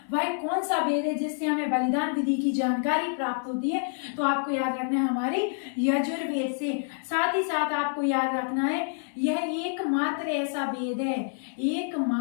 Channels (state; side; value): silent; right; 60 dB below the other